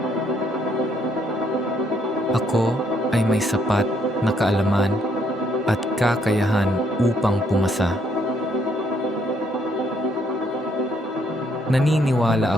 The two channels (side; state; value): both; normal; correlation 0.71